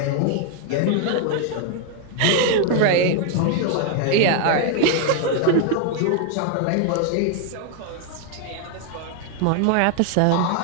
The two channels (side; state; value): both; different; correlation 0.00